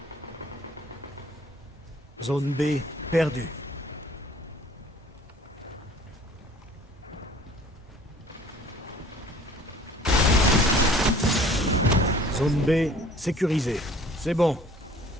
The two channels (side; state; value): both; normal; correlation 0.51